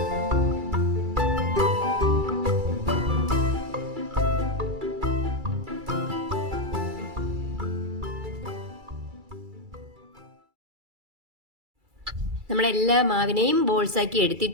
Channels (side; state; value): left; late; 2.3 ms